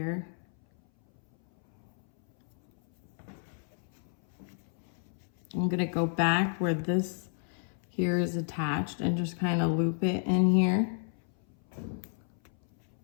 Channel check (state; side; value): silent; right; 57 dB below the other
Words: I'm gonna go back where this here is attached and just kind of loop it in here.